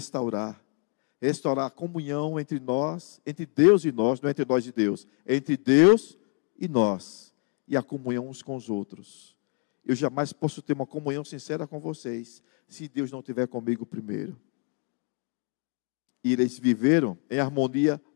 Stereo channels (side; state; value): right; quieter; 34.3 dB